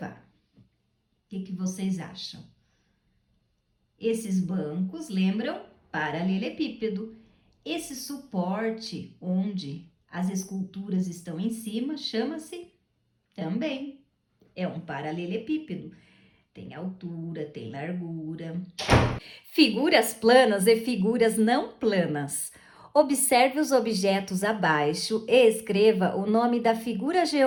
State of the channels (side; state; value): both; identical; correlation 1.00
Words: O que vocês acham? Esses bancos lembram paralelepípedo. Esse suporte onde as esculturas estão em cima chama-se também. É um paralelepípedo. Tem altura, tem largura. Figuras planas e figuras não planas. Observe os objetos abaixo e escreva o nome da figura